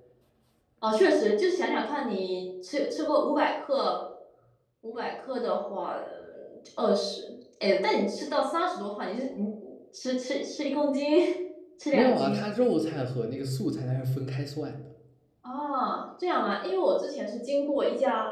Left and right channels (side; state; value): both; identical; correlation 1.00